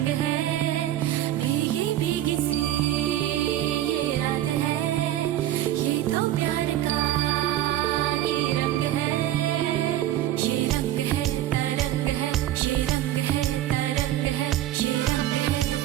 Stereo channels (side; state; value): left; quieter; 13.1 dB